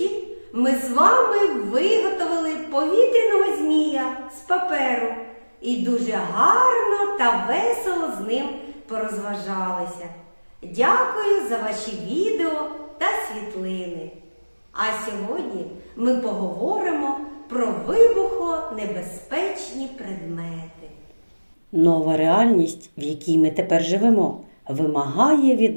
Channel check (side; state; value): both; inverted; correlation -1.00